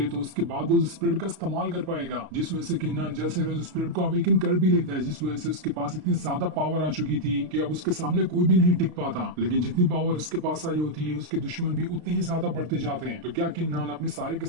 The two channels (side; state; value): left; late; 33 ms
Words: तो उसके बाद वो स्पिरिट का इस्तेमाल कर पाएगा, जिस वजह से किन्नान जल्द से जल्द स्पिरिट को अवेकन कर भी लेता है, जिस वजह से उसके पास इतनी ज्यादा पावर आ चुकी थी कि अब उसके सामने कोई भी नहीं टिक पाता। लेकिन जितनी पावर उसके पास आई होती है उसके दुश्मन भी उतने ही ज्यादा बढ़ते जाते हैं। तो क्या किन्नान अपने सारे के